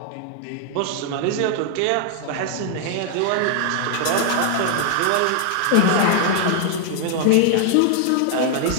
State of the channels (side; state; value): both; different; correlation 0.00